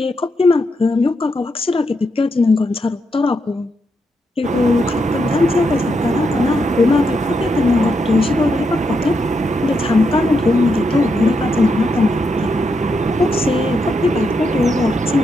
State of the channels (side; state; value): both; normal; correlation 0.81